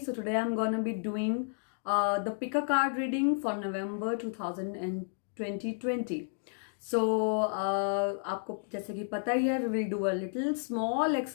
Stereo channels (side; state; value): right; silent; digital silence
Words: today I'm gonna be doing the pick a card reading for November 2020. So आपको जैसे कि पता ही है, we will do a little small